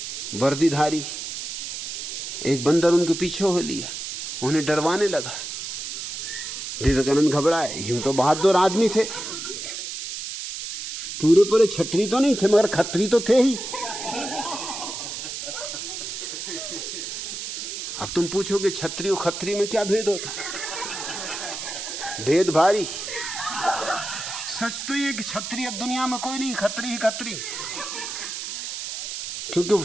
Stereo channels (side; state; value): right; noise; hiss, 6 dB below the sound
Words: वर्दीधारी, एक बंदर उनके पीछे हो लिया, उन्हें डरवाने लगा। विवेकानंद घबराए। यूं तो बहादुर आदमी थे, पूरे पूरे छतरी तो नहीं थे, मगर खत्री तो थे ही। अब तुम पूछोगे छतरी और खत्री में क्या भेद होता? भेद भारी। सच तो ये कि छतरी अब दुनिया में कोई नहीं, खत्री ही खत्री।